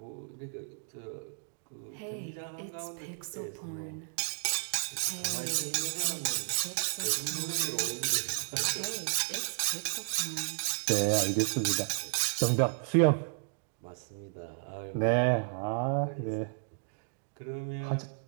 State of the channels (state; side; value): silent; left; digital silence